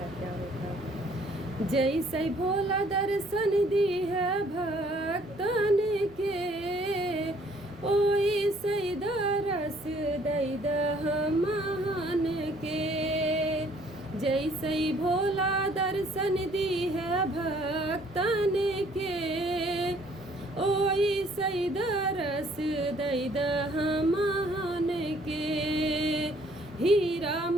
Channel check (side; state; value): right; noise; rumble, 30 dB below the sound